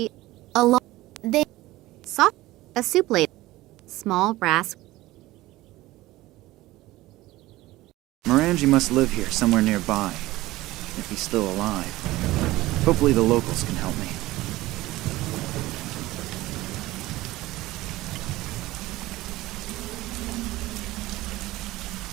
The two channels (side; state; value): left; quieter; 17.9 dB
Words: a soup plate. Small brass. Morangi must live here somewhere nearby, if he's still alive. Hopefully the locals can help me.